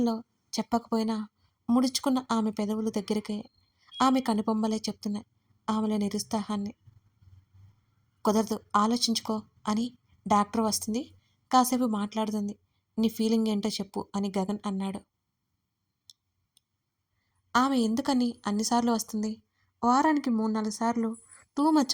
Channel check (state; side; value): identical; both; correlation 1.00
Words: చెప్పకపోయినా ముడుచుకున్న ఆమె పెదవులు దగ్గరికే ఆమె కనుబొమ్మలే చెప్తున్నాయి ఆమెలో నిరుత్సాహాన్ని. కుదరదు, ఆలోచించుకో అని డాక్టర్ వస్తుంది. కాసేపు మాట్లాడుతుంది. నీ ఫీలింగ్ ఏంటో చెప్పు అని గగన్ అన్నాడు. ఆమె ఎందుకని అన్నిసార్లు వస్తుంది? వారానికి 3, 4 సార్లు టూ